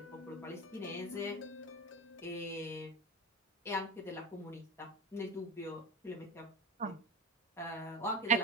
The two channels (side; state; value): both; normal; correlation 0.25